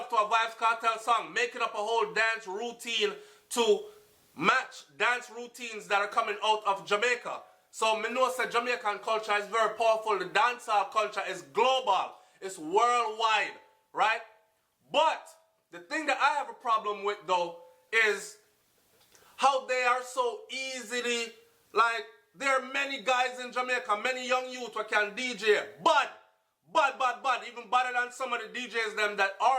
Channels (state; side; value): identical; both; correlation 1.00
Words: to a Vybz Kartel song, making up a whole dance routine to match dance routines that are coming out of Jamaica. So me know that Jamaican culture is very powerful. The dancehall culture is global. It's worldwide, right? But the thing that I have a problem with though is how they are so easily, like, there are many guys in Jamaica, many young youth who can DJ, bad, even better than some of the DJs them that